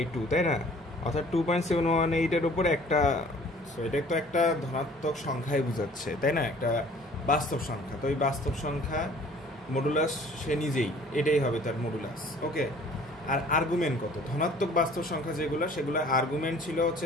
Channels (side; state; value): both; normal; correlation 0.52